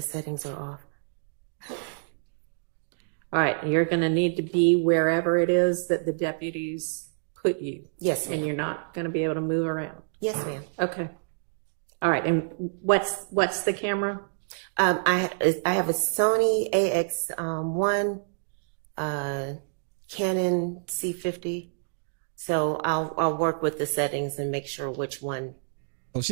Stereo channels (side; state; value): left; silent; digital silence